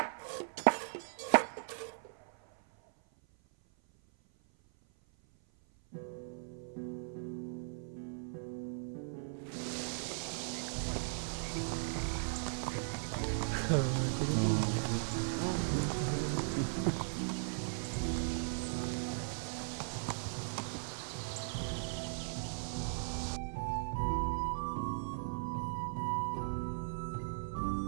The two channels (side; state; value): left; silent; 52 dB below the other